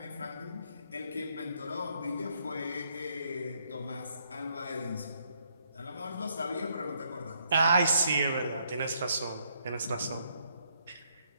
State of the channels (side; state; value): both; inverted; correlation -0.72